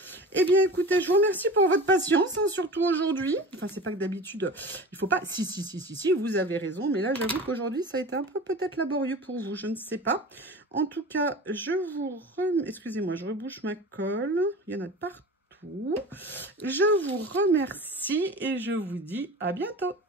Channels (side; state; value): both; normal; correlation 0.34